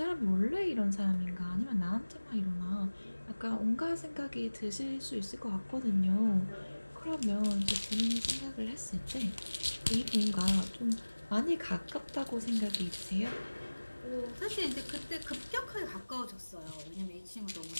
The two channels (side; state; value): both; inverted; correlation -1.00